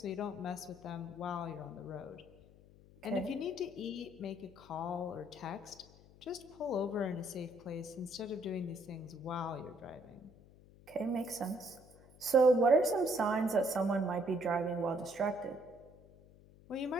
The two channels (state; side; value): noise; left; hum, 23 dB below the sound